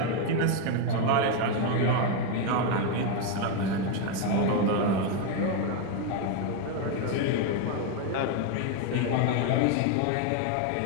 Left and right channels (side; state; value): both; different; correlation 0.01